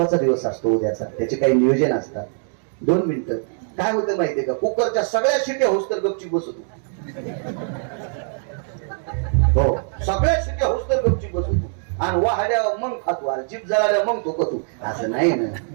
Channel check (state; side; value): silent; left; 58 dB below the other